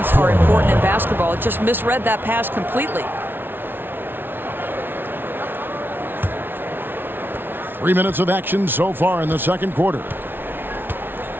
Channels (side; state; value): left; late; 0.10 ms